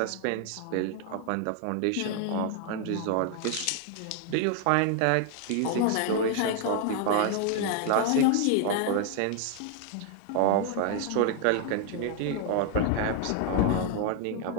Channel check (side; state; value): both; different; correlation 0.00